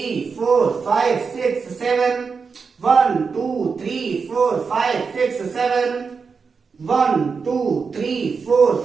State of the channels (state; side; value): quieter; left; 5.3 dB